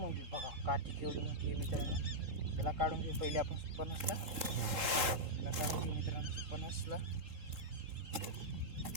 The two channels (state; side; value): late; left; 3.8 ms